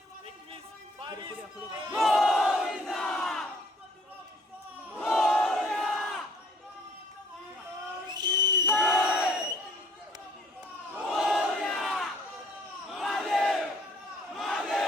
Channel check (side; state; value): both; normal; correlation 0.59